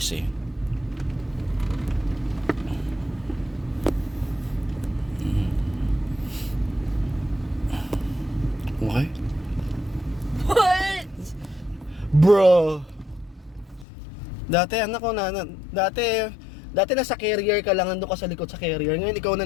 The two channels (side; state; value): right; drops out; at 13.9 s